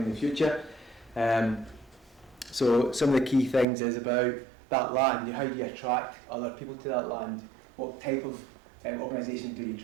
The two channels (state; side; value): drops out; left; at 3.7 s